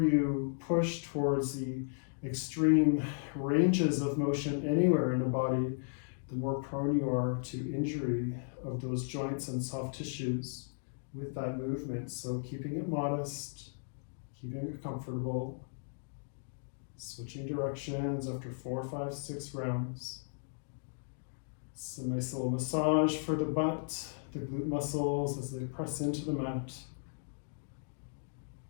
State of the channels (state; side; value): silent; right; digital silence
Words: push towards the extreme ranges of motion anywhere in the body, the more prone you are to injury of those joints and soft tissues with that movement. So keeping it modest, keeping it comfortable, switching directions after 4, 5, 6 rounds. It's a nice little massage for the butt, the glute muscles as they press into the mat.